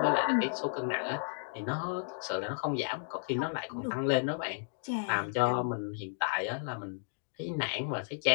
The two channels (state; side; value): silent; right; digital silence